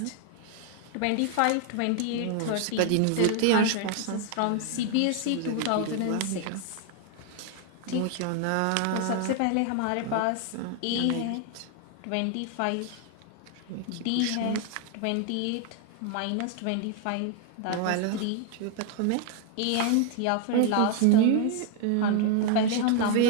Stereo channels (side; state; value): both; different; correlation 0.01